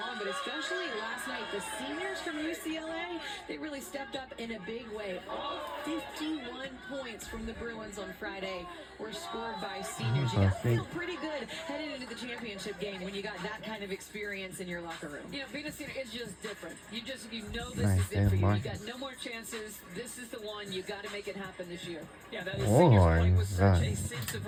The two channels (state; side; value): identical; both; correlation 1.00